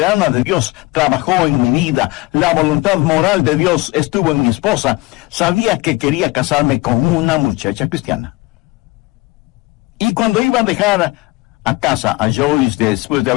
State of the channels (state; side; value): quieter; right; 22.4 dB